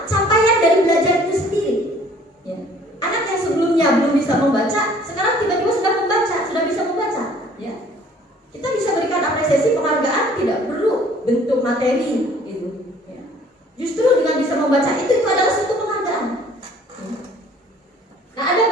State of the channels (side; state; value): both; normal; correlation 0.55